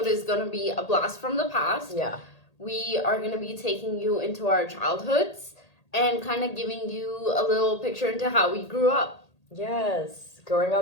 is going to be a blast from the past. Yeah. We are going to be taking you into our childhoods and kind of giving you a little picture into how we grew up. Yes. Growing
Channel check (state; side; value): late; right; 1.8 ms